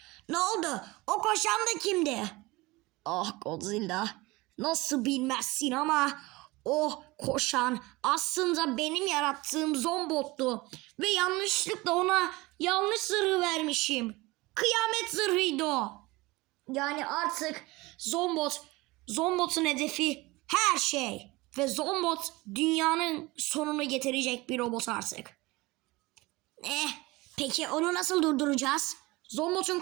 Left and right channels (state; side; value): quieter; left; 21.9 dB